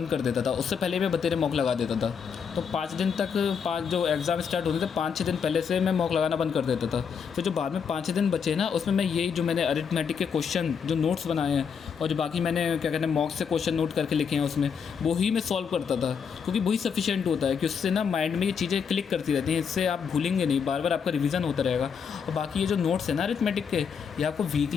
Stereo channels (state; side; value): quieter; right; 6.6 dB